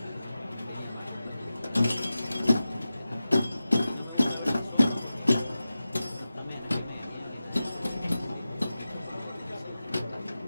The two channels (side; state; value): both; inverted; correlation -0.94